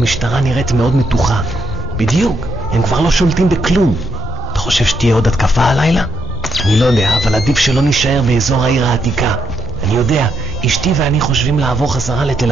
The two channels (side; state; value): both; normal; correlation 0.77